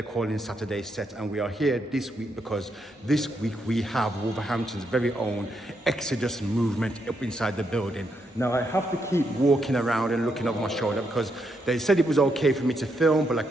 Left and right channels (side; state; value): both; normal; correlation 0.79